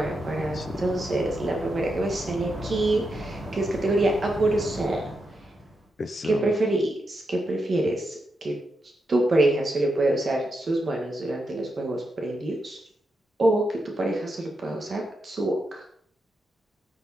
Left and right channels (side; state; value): both; normal; correlation 0.85